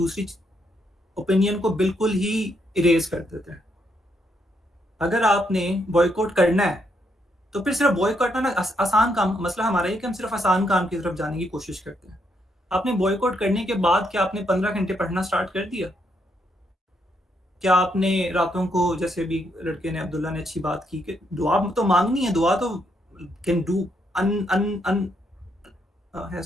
اوپینین کو بالکل ہی اریز کر دیتے ہیں. اگر آپ نے بوائیکاٹ کرنا ہے تو پھر صرف بوائیکاٹ کرنا آسان کام. مسئلہ ہمارا یہ کہ ہم صرف آسان کام کی طرف جانے کی کوشش کرتے ہیں. آپ نے بوائیکاٹ کرنے کے بعد کیا آپ نے 15 گھنٹے پڑھنا سٹارٹ کر دیا؟ کیا آپ نے راتوں کو، جیسے بھی لڑکے نے عبداللہ نے اچھی بات کی کہ دعا تو مانگنی ہے، دعا تو can do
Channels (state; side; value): normal; both; correlation 0.76